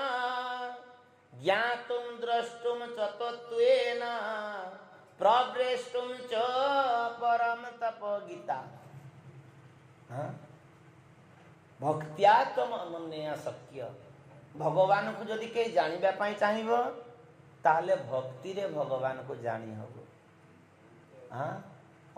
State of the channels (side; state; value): both; identical; correlation 1.00